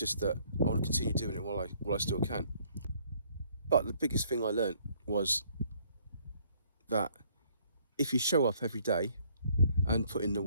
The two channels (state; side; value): inverted; both; correlation -0.64